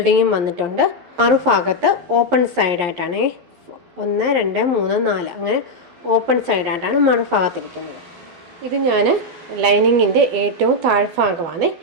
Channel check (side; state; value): left; late; 11 ms